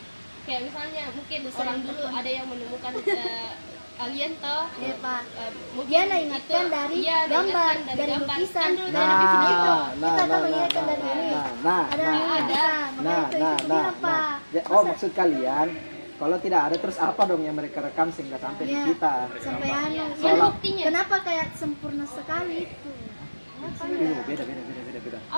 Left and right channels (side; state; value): both; inverted; correlation -1.00